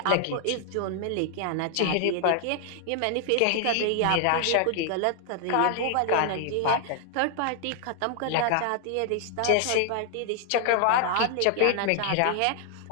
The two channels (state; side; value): different; both; correlation 0.00